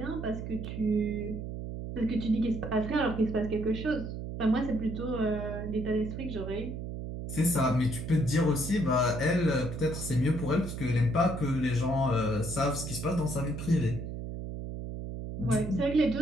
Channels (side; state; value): right; noise; hum, 6 dB below the sound